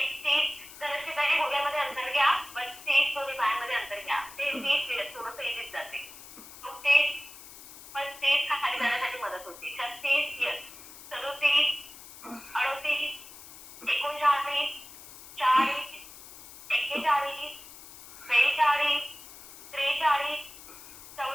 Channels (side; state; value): left; noise; hiss, 17 dB below the sound